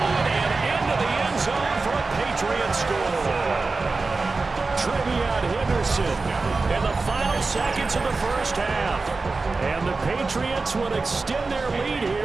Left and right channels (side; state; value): left; quieter; 3.8 dB